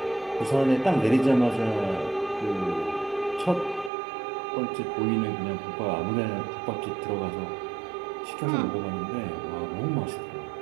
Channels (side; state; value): left; drops out; at 3.9 s